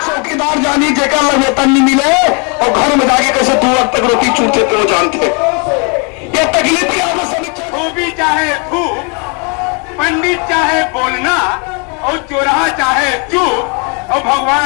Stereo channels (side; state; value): right; quieter; 34.7 dB